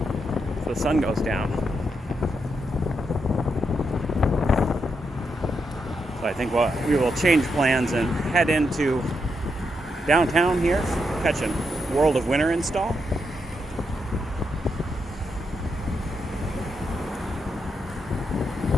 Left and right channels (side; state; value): both; normal; correlation 0.82